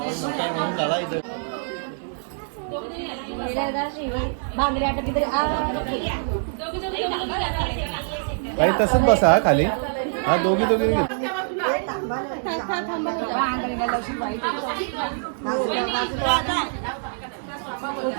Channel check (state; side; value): silent; left; digital silence